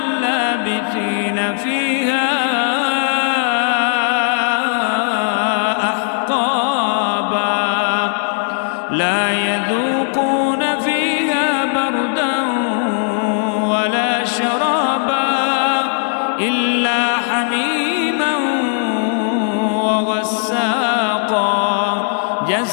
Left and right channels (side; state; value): right; silent; 64 dB below the other